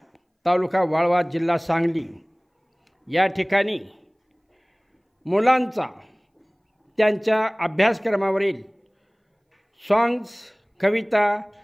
तालुका वाळवा, जिल्हा सांगली या ठिकाणी मुलांचा त्यांच्या अभ्यासक्रमावरील सॉंग्स, कविता,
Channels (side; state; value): both; identical; correlation 1.00